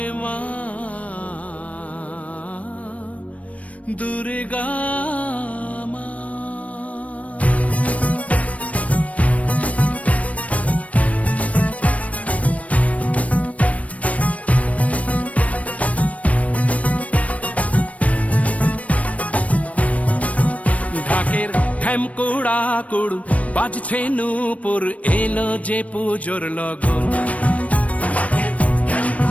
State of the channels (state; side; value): late; right; 0.066 ms